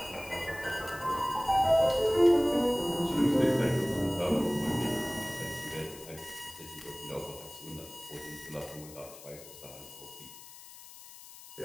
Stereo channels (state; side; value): noise; left; hiss, 17 dB below the sound